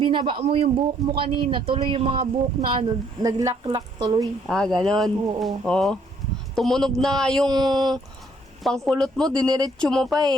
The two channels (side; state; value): both; normal; correlation 0.66